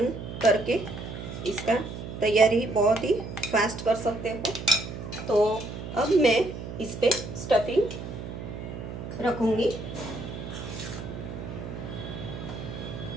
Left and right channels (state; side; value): noise; right; hum, 9 dB below the sound